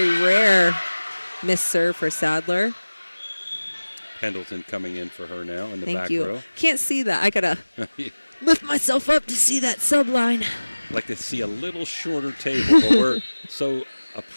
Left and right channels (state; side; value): inverted; both; correlation -1.00